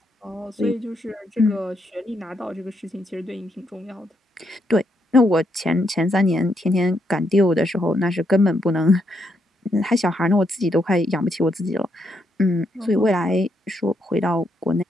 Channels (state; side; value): normal; both; correlation 0.78